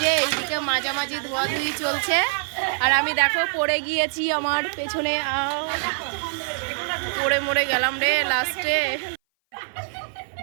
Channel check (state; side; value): silent; left; 58 dB below the other